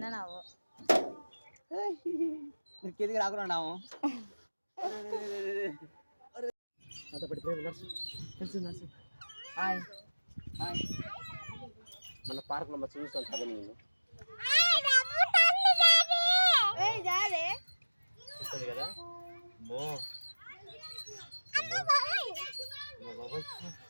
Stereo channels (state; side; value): inverted; both; correlation -1.00